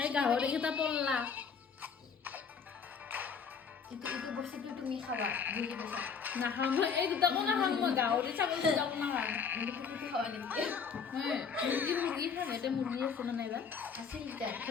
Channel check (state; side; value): quieter; right; 6.2 dB